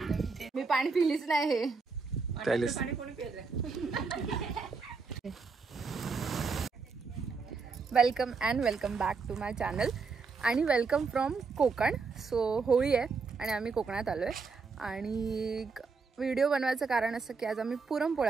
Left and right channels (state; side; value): quieter; left; 4.7 dB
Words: मी पाणी पिलीच नाही हे पाणी कोणी पिलं? Welcome and welcome back to my channel आणि welcome from Konkan. So Holi आहे आणि आम्ही कोकणात आलो आहे आणि व्हिडिओ बनवायचं कारण असं की आज आम्ही